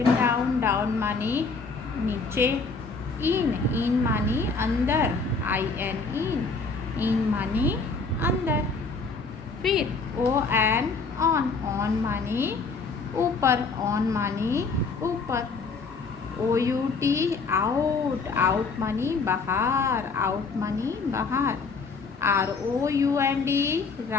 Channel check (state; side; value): quieter; right; 4.4 dB